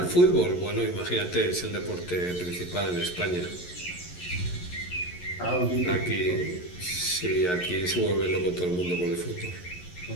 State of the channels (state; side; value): late; right; 11 ms